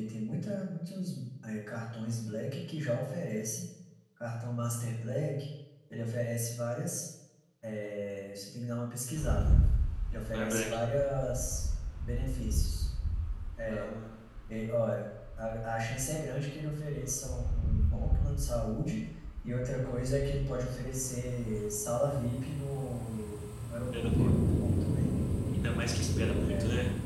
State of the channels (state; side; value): identical; both; correlation 1.00